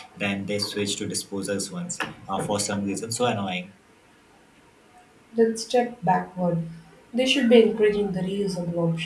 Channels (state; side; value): identical; both; correlation 1.00